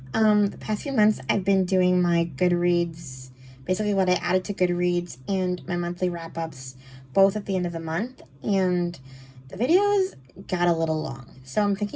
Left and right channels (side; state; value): both; identical; correlation 1.00